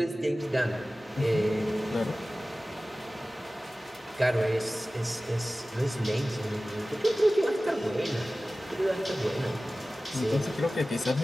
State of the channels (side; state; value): both; normal; correlation 0.97